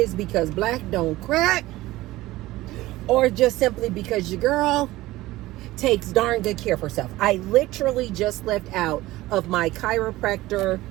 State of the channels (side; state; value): left; quieter; 17.7 dB